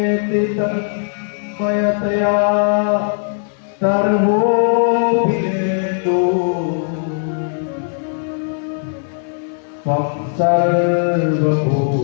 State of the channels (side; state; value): right; silent; 67 dB below the other